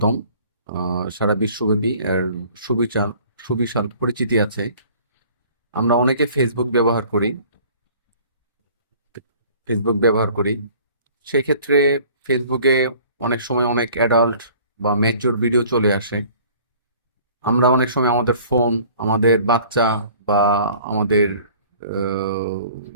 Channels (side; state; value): both; inverted; correlation -0.51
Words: সারা বিশ্বব্যাপী এর সুবিশাল সুবিশাল পরিচিতি আছে। আমরা অনেকে ফেসবুক ব্যবহার করি। সেই ক্ষেত্রে ফেসবুকে অনেক সময় অনেক অ্যাডাল্ট বা ম্যাচিউর ভিডিও চলে আসে। আমরা অনেক সময় আমাদের ফোন, আমাদের বাচ্চা বা আমাদের আহ,